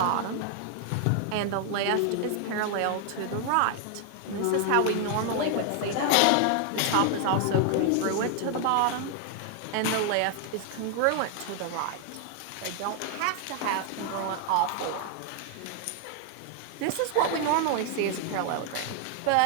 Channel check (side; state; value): both; different; correlation 0.00